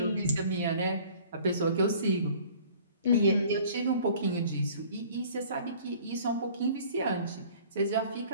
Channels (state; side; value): inverted; both; correlation -0.51